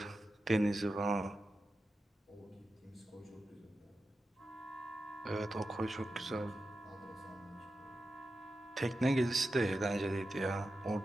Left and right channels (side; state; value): both; normal; correlation 0.91